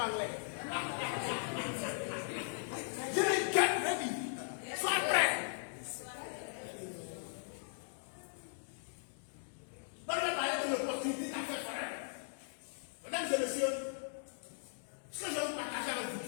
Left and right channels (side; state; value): right; silent; digital silence